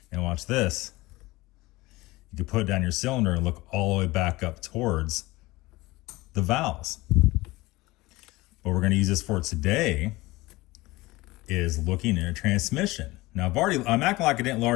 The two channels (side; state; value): right; quieter; 20.4 dB